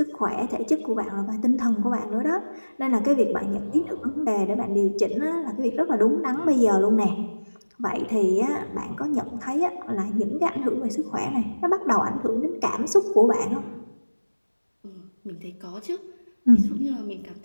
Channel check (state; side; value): inverted; both; correlation -1.00